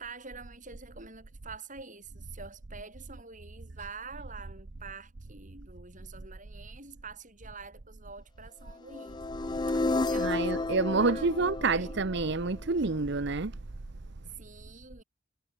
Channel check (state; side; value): normal; both; correlation 0.24